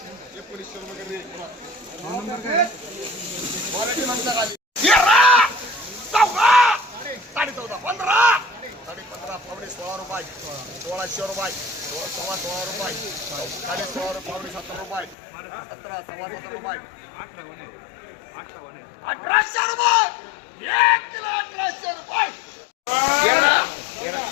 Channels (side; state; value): right; drops out; at 15.2 s